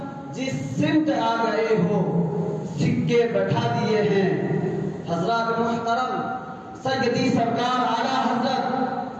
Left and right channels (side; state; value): both; identical; correlation 1.00